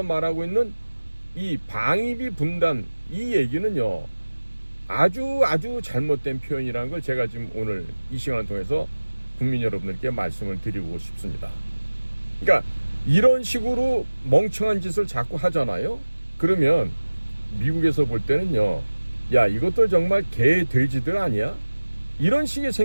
말하고 있는 이 방위비 분담, 이 얘기는요, 아주 잘못된 표현이라는 걸 제가 지금 오늘 이 시간을 통해서 국민 여러분들께 말씀을 드리고 싶습니다. 그러니까 이런 식으로 멍청한 짓을 자꾸 하잖아요. 그러면 미국에서 볼 때는요, 야, 이것들 정말 개 돼지들 아니야? 이런 식의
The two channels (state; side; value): inverted; both; correlation -1.00